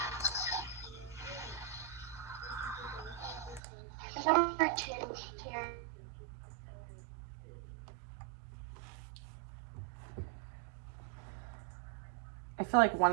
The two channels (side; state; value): left; drops out; at 3.6 s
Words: Number 2 here. I feel like one